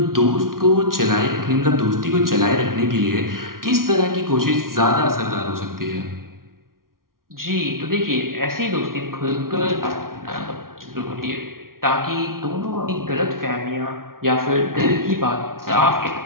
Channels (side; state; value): left; late; 0.92 ms